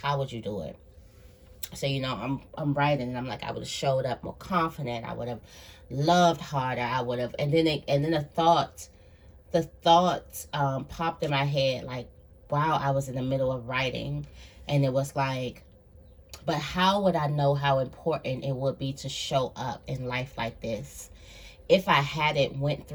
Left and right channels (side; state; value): both; identical; correlation 1.00